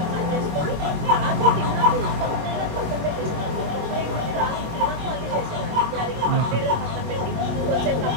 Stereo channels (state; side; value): late; left; 24 ms